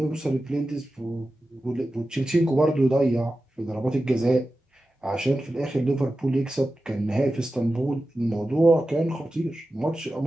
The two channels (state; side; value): normal; both; correlation 0.93